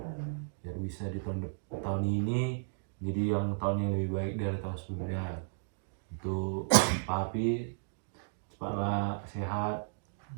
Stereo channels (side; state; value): left; silent; digital silence